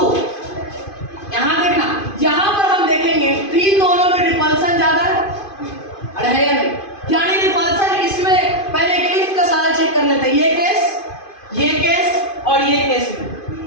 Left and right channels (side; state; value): right; late; 2.5 ms